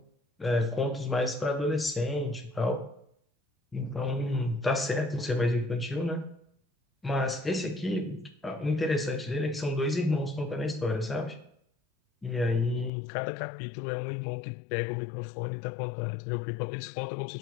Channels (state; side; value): drops out; right; at 12.9 s